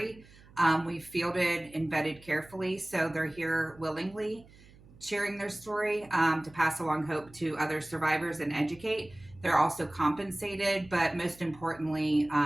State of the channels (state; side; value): noise; right; hum, 24 dB below the sound